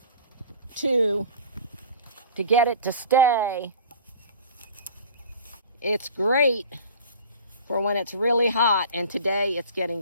To get it to stay. It's great for when it's really hot, and today it's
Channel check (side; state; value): both; inverted; correlation -0.42